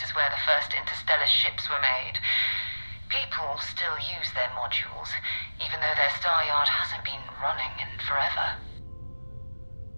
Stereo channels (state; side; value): inverted; both; correlation -1.00